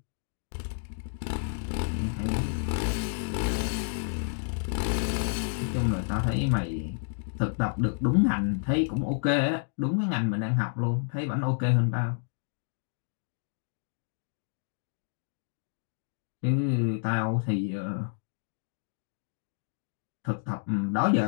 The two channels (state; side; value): silent; right; digital silence